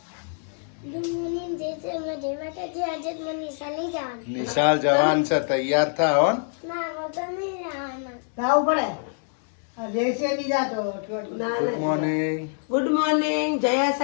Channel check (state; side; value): silent; right; 61 dB below the other